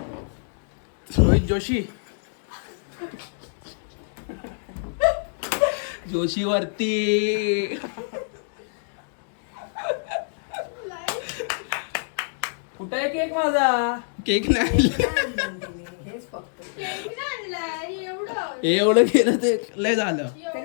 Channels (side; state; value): right; silent; digital silence